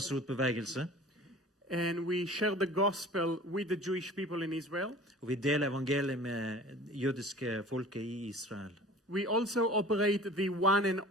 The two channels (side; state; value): both; normal; correlation 0.43